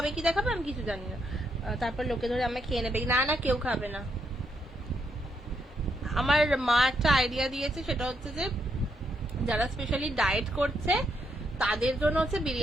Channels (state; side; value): normal; both; correlation 0.77